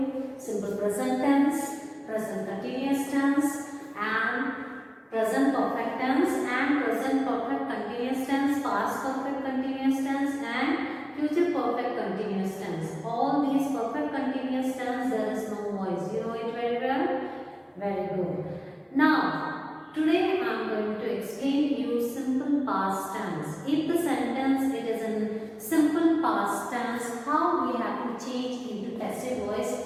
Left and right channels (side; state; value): both; identical; correlation 1.00